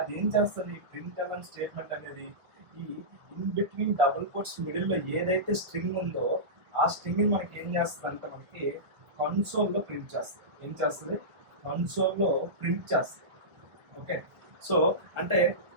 ఏం చేస్తుంది, ప్రింట్ ఎల్ఎన్ స్టేట్మెంట్ అనేది ఈ ఇన్ బిట్వీన్ డబుల్ కోట్స్ మిడిల్లో ఏదైతే స్ట్రింగ్ ఉందో ఆ స్ట్రింగ్ని మనకి ఏం చేస్తుంది అంటే మనకి కన్సోల్లో ప్రింట్ చేస్తుంది. ఏం చేస్తుంది, కన్సోల్లో ప్రింట్ చేస్తుంది. ఓకే, సో అంటే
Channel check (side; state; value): left; late; 1.7 ms